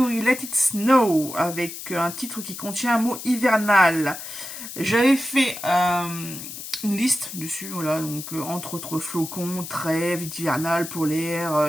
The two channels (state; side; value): noise; left; hiss, 10 dB below the sound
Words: Let It Snow, avec un titre qui contient un mot hivernal. J'avais fait une liste dessus, voilà, donc entre autres flocons, trêve, hivernal, polaire,